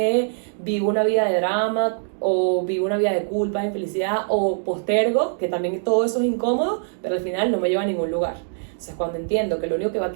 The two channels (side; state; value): left; silent; digital silence